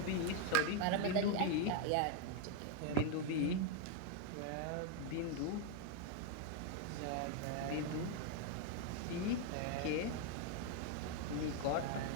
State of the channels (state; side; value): different; both; correlation 0.01